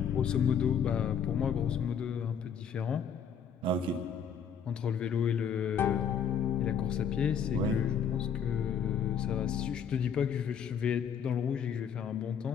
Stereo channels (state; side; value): quieter; right; 7.2 dB